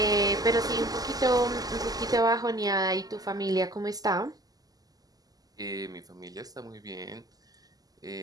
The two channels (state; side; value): late; left; 0.18 ms